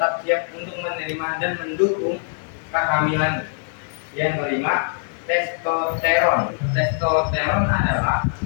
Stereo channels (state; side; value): silent; right; 64 dB below the other